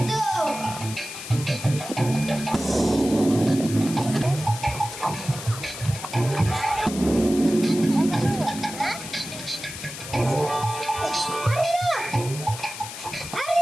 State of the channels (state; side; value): noise; left; hiss, 10 dB below the sound